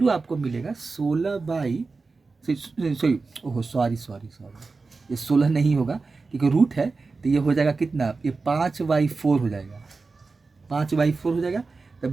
आपको मिलेगा 16 सॉरी ओहो सॉरी, ये 16 नहीं होगा क्योंकि रूट है। तो ये हो जाएगा कितना, ये 5/4 हो जाएगा, 5/4 हो जाएगा। तो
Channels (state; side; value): quieter; left; 4.1 dB